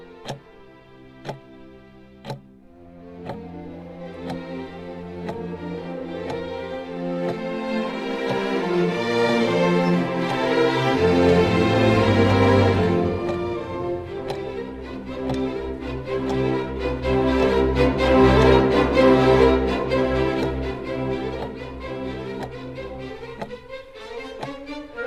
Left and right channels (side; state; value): both; identical; correlation 1.00